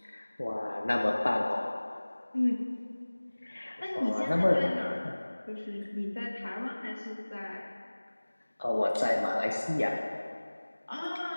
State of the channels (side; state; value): both; inverted; correlation -1.00